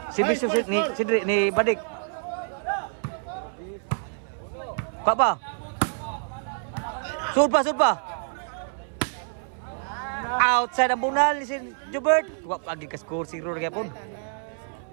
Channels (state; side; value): silent; left; 60 dB below the other